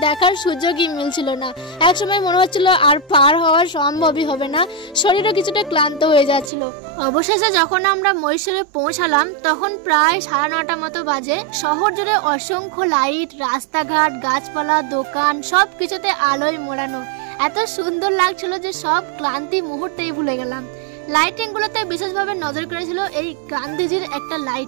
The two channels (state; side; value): drops out; left; at 6.5 s